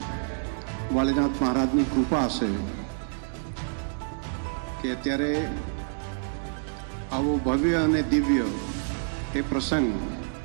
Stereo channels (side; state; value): left; silent; digital silence